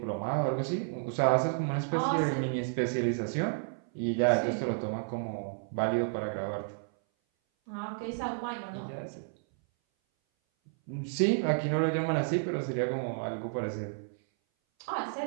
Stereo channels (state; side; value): silent; left; 57 dB below the other